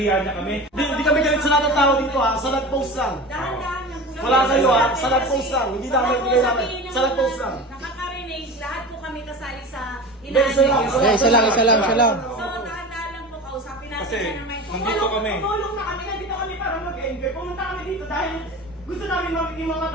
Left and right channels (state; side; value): normal; both; correlation 0.32